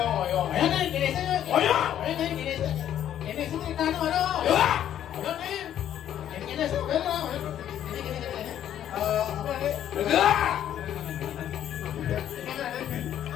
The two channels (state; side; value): quieter; right; 10.7 dB